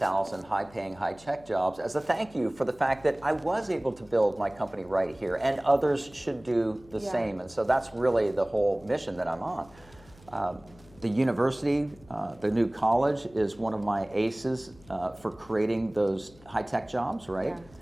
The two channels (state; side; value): noise; left; hum, 25 dB below the sound